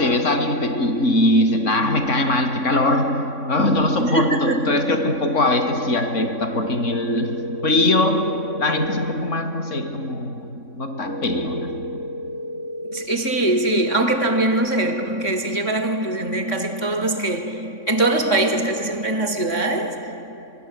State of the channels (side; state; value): right; late; 3.6 ms